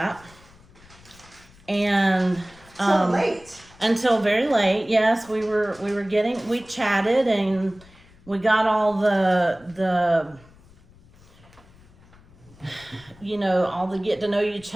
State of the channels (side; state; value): left; noise; rumble, 25 dB below the sound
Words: And So late. until very late, yes, we chatted and we got all the all the get to know you